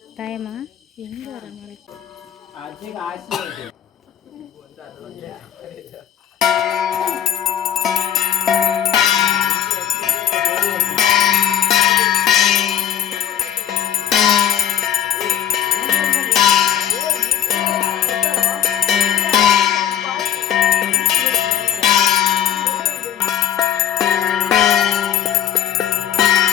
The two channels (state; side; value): quieter; right; 10.1 dB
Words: ಟೈಮ ಹೆಂಗಾರ ಮಾಡಿ